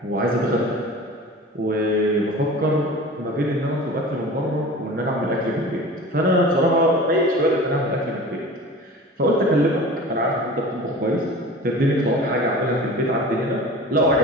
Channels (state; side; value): normal; both; correlation 0.38